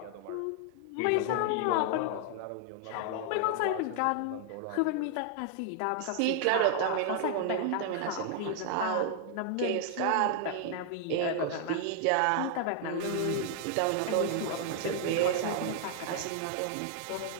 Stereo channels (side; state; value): both; different; correlation 0.00